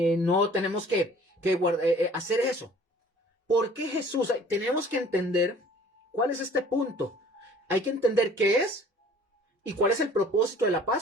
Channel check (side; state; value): both; normal; correlation 0.51